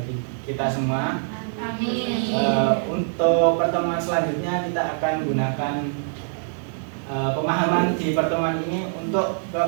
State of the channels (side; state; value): left; silent; 63 dB below the other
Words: kita semua. Amin. Untuk pertemuan selanjutnya kita akan menggunakan pemahaman di pertemuan ini. Untuk ke